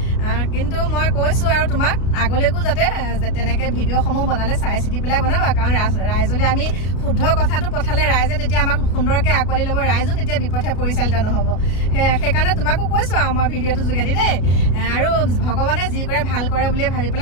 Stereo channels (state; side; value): late; right; 33 ms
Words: কিন্তু মই কৈছো আৰু তোমাক আগলৈকো যাতে তেনেকে ভিডিঅ'সমূহ বনালে চাই চিতি পেলাই বনাবা কাৰণ ৰাইজলে আমি শুদ্ধ কথাটো পঠালে ৰাইজে তেতিয়া আমাক সুন্দৰকে আঁকোৱালি ল'ব ৰাইজো তেতিয়া বিপথে পৰিচালিত নহ'ব সেইকাৰণে তোমাকো কৈছো আৰু মই ভিডিঅ'টো যোগেদি দেই আৰু ভগৱানে যি কৰে ভাল কৰে বুলি ভাবি